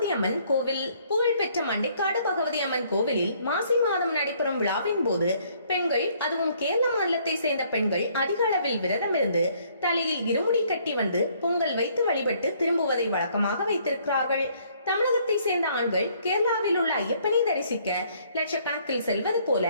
அம்மன் கோவில். புகழ்பெற்ற மண்டைக்காடு பகவதி அம்மன் கோவிலில் மாசி மாதம் நடைபெறும் விழாவின் போது பெண்கள், அதுவும் கேரள மாநிலத்தை சேர்ந்த பெண்கள் அதிக அளவில் விரதம் இருந்து தலையில் இருமுடி கட்டி வந்து பொங்கல் வைத்து வழிபட்டு திரும்புவதை வழக்கமாக வைத்திருக்கிறார்கள். தமிழகத்தை சேர்ந்த ஆண்கள் கேரளாவில் உள்ள ஐயப்பனை தரிசிக்க லட்சக்கணக்கில் செல்வது போல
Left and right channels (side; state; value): both; inverted; correlation -0.64